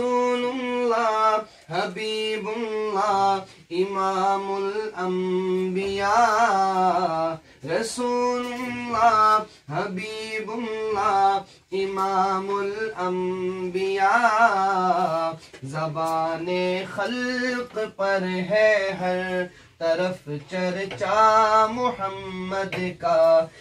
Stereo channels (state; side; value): identical; both; correlation 1.00